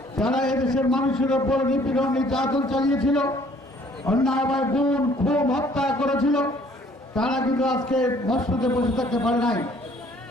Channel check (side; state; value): both; normal; correlation 0.59